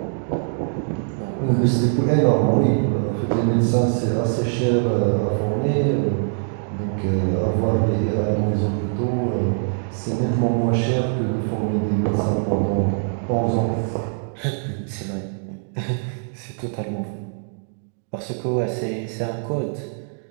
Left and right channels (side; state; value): left; silent; digital silence